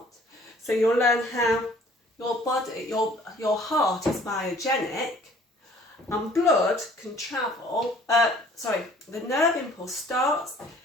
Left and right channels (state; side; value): normal; both; correlation 0.55